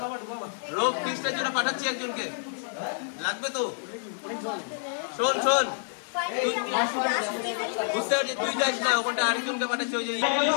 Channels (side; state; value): right; silent; digital silence